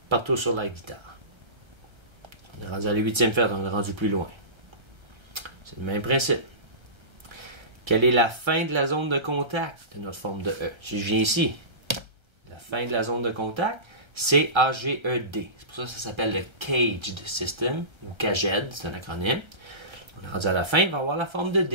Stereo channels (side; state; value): left; late; 1.3 ms